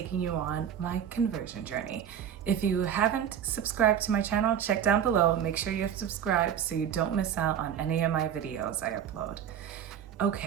you on my conversion journey. If you haven't subscribed to my channel, check down below. Make sure you're subscribed so you don't miss out on any of my videos I upload.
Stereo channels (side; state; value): left; quieter; 9.1 dB